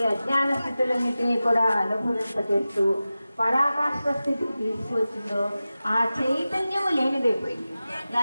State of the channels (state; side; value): inverted; both; correlation -0.95